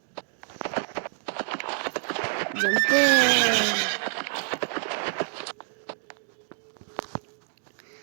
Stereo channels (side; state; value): left; silent; digital silence